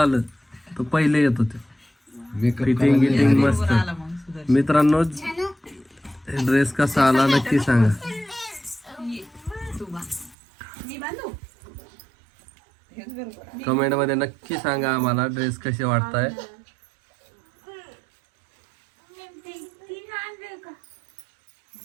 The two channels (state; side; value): drops out; left; at 10.4 s